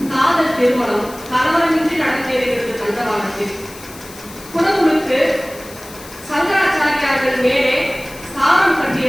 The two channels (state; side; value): noise; left; hiss, 18 dB below the sound